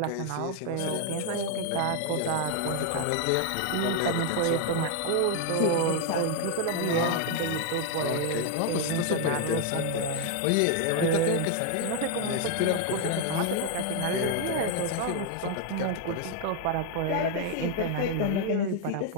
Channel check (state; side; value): different; both; correlation 0.01